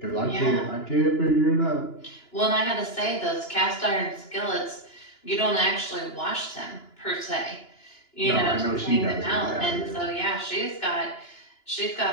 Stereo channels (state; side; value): late; right; 2.9 ms